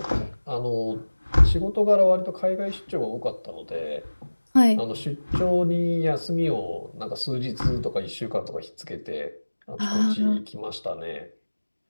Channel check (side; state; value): both; inverted; correlation -1.00